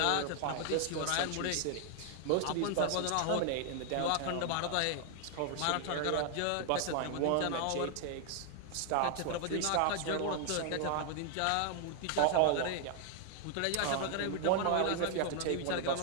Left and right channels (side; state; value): both; different; correlation 0.00